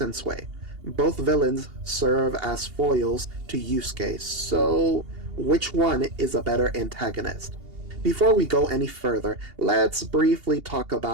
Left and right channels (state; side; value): late; left; 2.8 ms